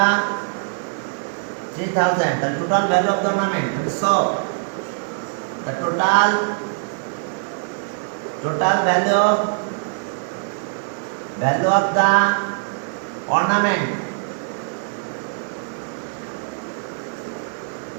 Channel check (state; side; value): silent; left; digital silence